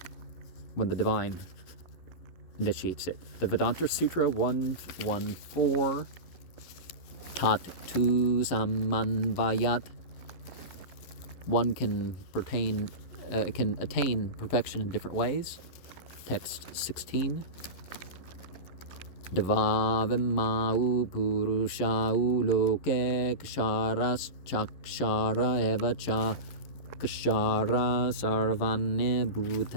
when the divine initiates it. The Vedanta Sutra 114, Tat Tu Samanvayat. One can attain perfection in different ways. Text 16. Devavimau Purushau Loke Ksharas Chakshara Evacha Kshara Sarvane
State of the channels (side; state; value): right; late; 11 ms